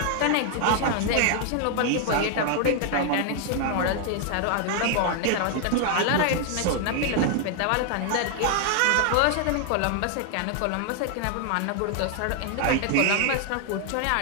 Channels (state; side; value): different; both; correlation 0.00